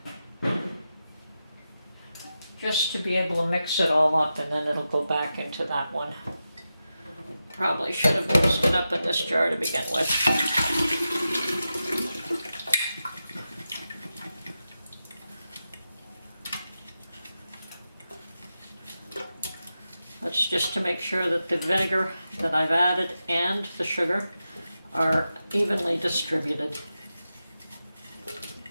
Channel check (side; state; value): both; inverted; correlation -0.91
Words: Just to be able to mix it all up, and then it'll go back into that one. Probably should have mixed it up in this jar to begin with. That's just to make sure that the vinegar that I've added and the sugar are evenly distributed.